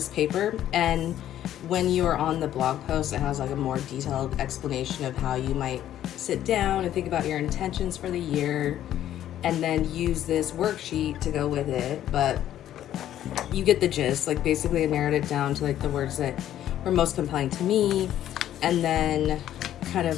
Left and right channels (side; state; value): right; quieter; 11.8 dB